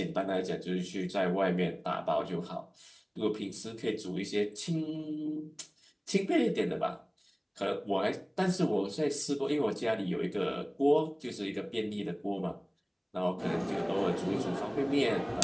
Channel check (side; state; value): both; identical; correlation 1.00